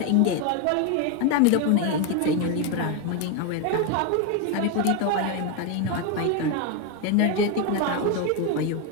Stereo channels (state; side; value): different; both; correlation 0.02